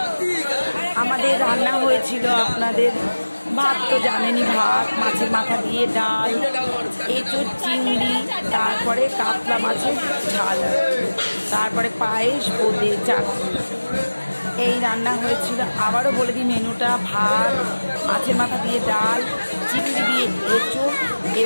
আমাদের রান্না হয়েছিল আপনাদের ভাত তো জানেনই, ভাত, মাছের মাথা দিয়ে ডাল, এঁচোড় চিংড়ি, তারপরে কাতলা মাছের ঝাল, তারপরে পায়েস, বোঁদে, চাটনি, এই রান্না হয়েছিল। আবারও বলে দিই মেনুটা: ভাত, মাছের মাথা দিয়ে ডাল, চিংড়ি দিয়ে এঁচোড়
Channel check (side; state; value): both; inverted; correlation -1.00